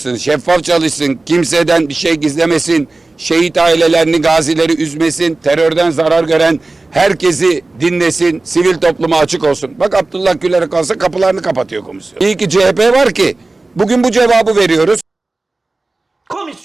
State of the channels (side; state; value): left; quieter; 3.2 dB